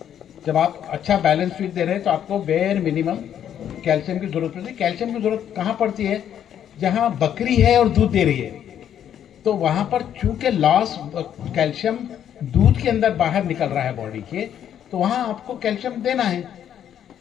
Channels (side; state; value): right; quieter; 9.8 dB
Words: जब आप अच्छा बैलेंस फीड दे रहे हैं तो आपको बेयर मिनिमम कैल्शियम की जरूरत पड़ती है। कैल्शियम की जरूरत कहाँ पड़ती है? जहाँ बकरी है और दूध दे रही है, तो वहाँ पर चूंकि लॉस कैल्शियम दूध के अंदर बाहर निकल रहा है बॉडी के, तो वहाँ आपको कैल्शियम देना है।